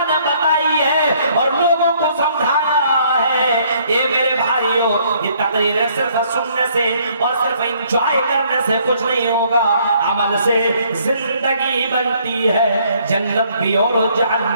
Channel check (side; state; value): both; inverted; correlation -0.65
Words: نے بتائی ہے اور لوگوں کو سمجھایا ہے۔ یہ میرے بھائیوں یہ تقریر صرف سننے سے اور صرف انجوائے کرنے سے کچھ نہیں ہوگا، عمل سے زندگی بنتی ہے، جنت بھی اور